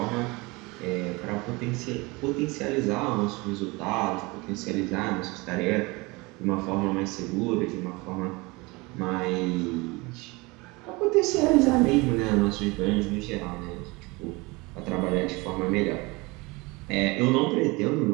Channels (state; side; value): quieter; left; 24.8 dB